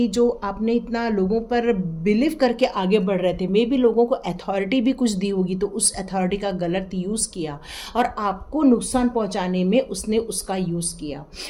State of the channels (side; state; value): both; identical; correlation 1.00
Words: जो आपने इतना लोगों पर बिलीव करके आगे बढ़ रहे थे, मे बी लोगों को अथॉरिटी भी कुछ दी होगी, तो उस अथॉरिटी का गलत यूज़ किया और आपको नुकसान पहुँचाने में उसने उसका यूज़ किया।